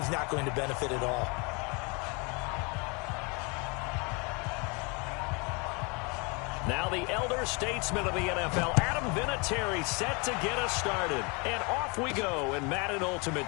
not going to benefit at all. Now the elder statesman of the NFL, Adam Vinatieri, set to get us started. And off we go in Madden Ultimate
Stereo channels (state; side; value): quieter; right; 30.7 dB